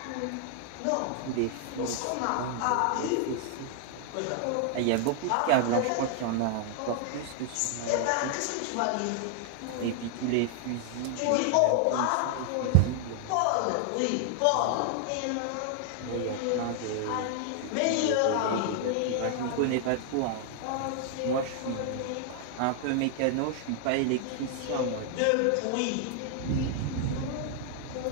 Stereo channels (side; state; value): both; different; correlation 0.00